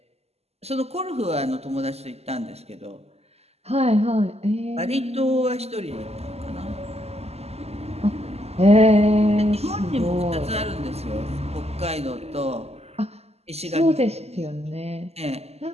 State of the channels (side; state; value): left; late; 0.30 ms